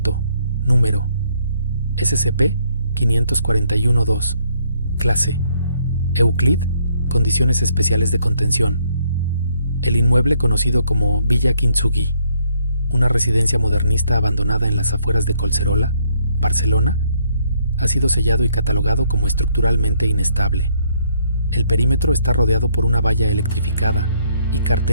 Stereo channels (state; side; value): inverted; both; correlation -0.70